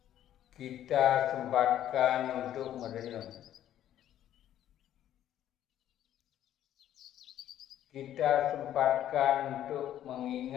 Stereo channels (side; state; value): right; quieter; 11.6 dB